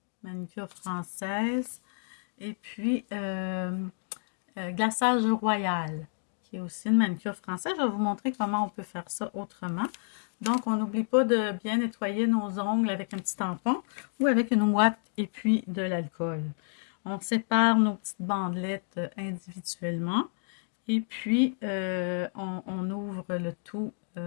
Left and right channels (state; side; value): silent; right; digital silence